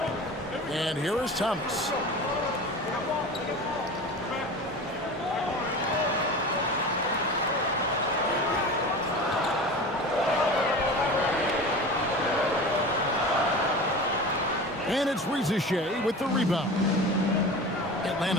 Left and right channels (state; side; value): normal; both; correlation 0.33